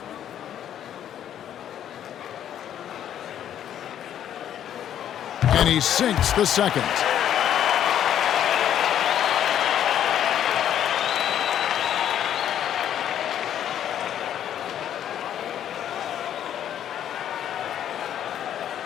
And he sinks the second.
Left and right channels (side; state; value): right; quieter; 10.3 dB